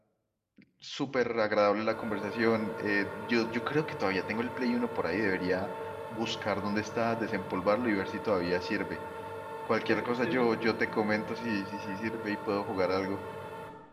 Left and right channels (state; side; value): identical; both; correlation 1.00